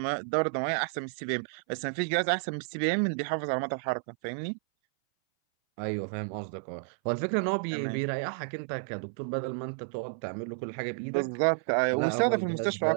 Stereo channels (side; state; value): left; silent; 57 dB below the other